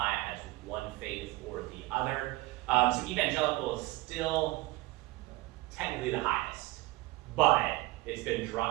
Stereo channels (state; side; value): quieter; left; 19.9 dB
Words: as one faith or the other. So evangelical is still technically the highest, but it's been